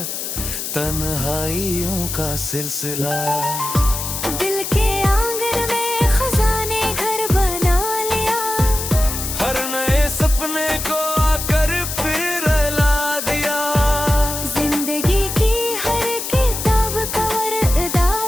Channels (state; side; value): noise; left; hiss, 5 dB below the sound